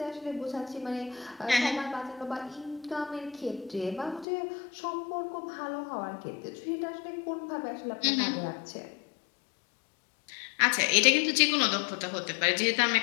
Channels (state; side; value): drops out; right; at 4.2 s